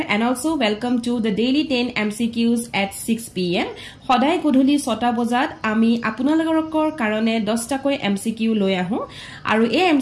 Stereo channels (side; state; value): both; identical; correlation 1.00